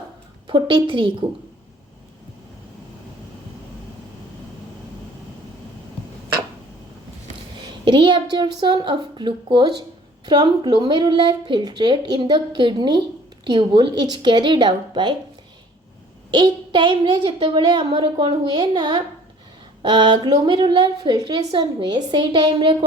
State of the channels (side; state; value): both; normal; correlation 0.52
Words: 43 को। Reabsorption of glucose from glomerular filtrate in the kidney tubule is carried out by एक टाइम रे जते बळे हमर कोन हुए ना ग्लोमेरुलर फिल्ट्रेशन हुए से टाइम रे